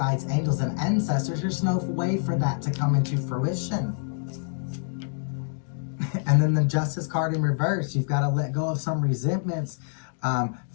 angels, and ancestors, there's no way for that to come into fruition. And then the Justice card in reverse, you've got to let go of some resentments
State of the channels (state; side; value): silent; right; digital silence